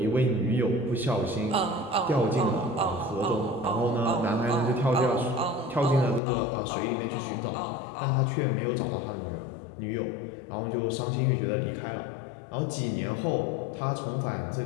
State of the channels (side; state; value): right; drops out; at 6.2 s